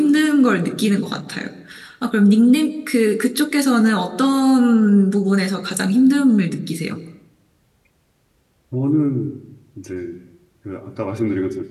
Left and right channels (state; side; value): identical; both; correlation 1.00